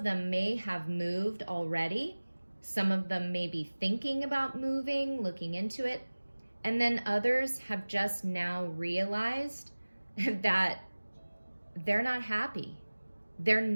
them may have moved already. Some of them may be thinking about moving, looking into it. And then others have just now realized that they're not happy. They're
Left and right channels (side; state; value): both; inverted; correlation -1.00